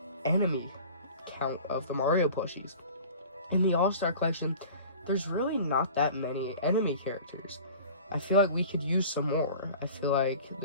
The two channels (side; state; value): both; inverted; correlation -0.42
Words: enemy count of the Mario plushies. In the All-Star Collection, there's really not that many enemy characters. I feel like we could use some more. I feel like